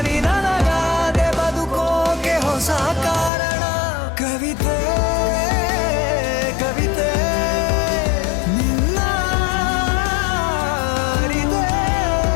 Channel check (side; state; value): right; drops out; at 3.3 s